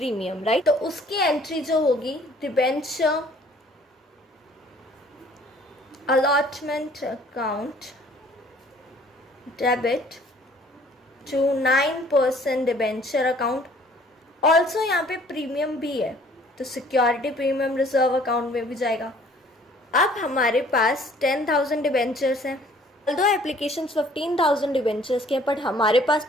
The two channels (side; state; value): both; normal; correlation 0.56